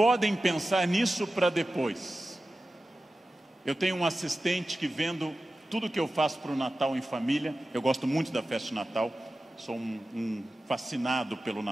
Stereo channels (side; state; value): both; normal; correlation 0.94